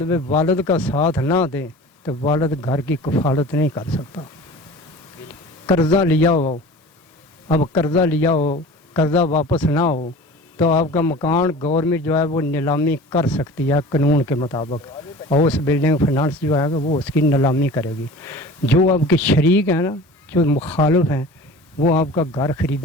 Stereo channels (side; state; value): both; normal; correlation 0.40